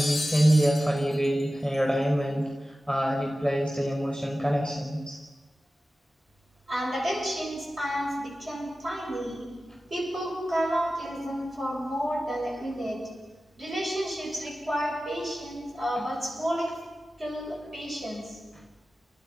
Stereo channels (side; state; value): both; normal; correlation 0.95